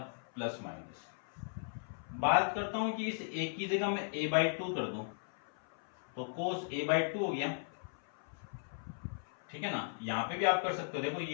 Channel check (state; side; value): silent; right; 53 dB below the other